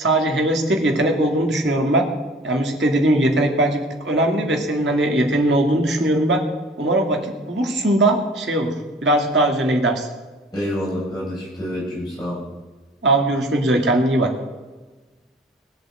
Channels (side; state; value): both; normal; correlation 0.48